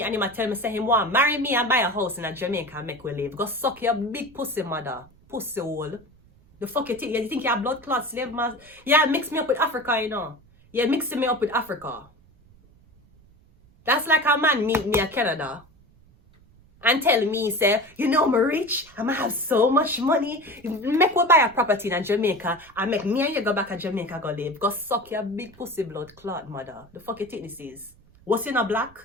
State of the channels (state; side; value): noise; right; rumble, 28 dB below the sound